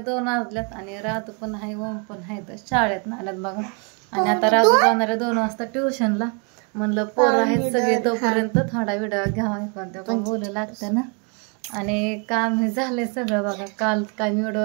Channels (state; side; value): quieter; left; 34.9 dB